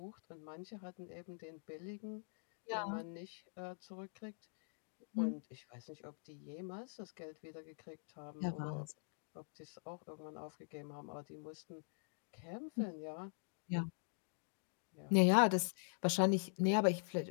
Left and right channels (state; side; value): silent; right; digital silence